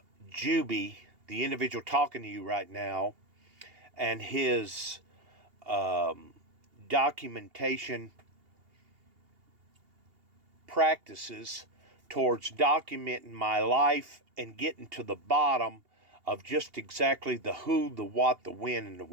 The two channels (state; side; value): late; left; 2.8 ms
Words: Juby, the individual talking to you right now, and his documentation practices towards documenting my life and getting to the bottom of just exactly the who, the what, the when, and the